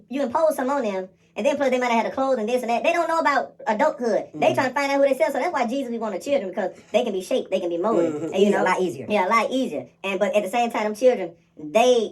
impose something on them, and then plus they might have had the clothes and this and that. They don't know about adulthood. They trying to find out who they sell. So that's why Jesus be wanting children, because they can be shaped, they can be molded, and a lot easier. Yeah, a lot easier. But at the same time, them children, they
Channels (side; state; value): both; identical; correlation 1.00